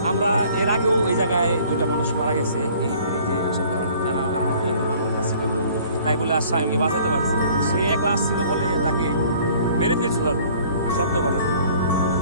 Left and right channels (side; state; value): both; inverted; correlation -0.53